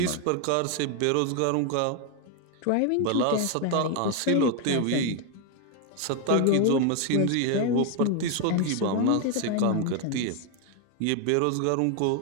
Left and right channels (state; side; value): different; both; correlation 0.01